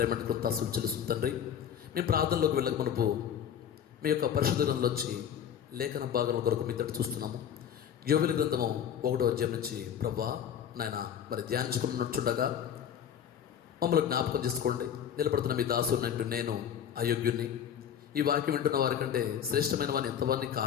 కృతాసులు చెల్లిస్తుంది తండ్రి. మేము ప్రార్థనలోకి వెళ్ళక మునుపు మీ యొక్క పరిశుద్ధ గ్రంథంలోంచి లేఖన భాగం కొరకు మీ తట్టు చూస్తున్నాము. యోవేలు గ్రంథము 1వ అధ్యాయం నుంచి ప్రభా నాయన మరి ధ్యానించుకున్నట్టుండగా మమ్మల్ని జ్ఞాపకం చేసుకోండి. నిలబడుతున్న మీ దాసునంటూ నేను అయోగ్యుణ్ణి, ఈ వాక్యం వింటున్న వారి కంటే శ్రేష్టమైన వాడిని ఎంతవాడిని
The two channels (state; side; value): quieter; right; 9.0 dB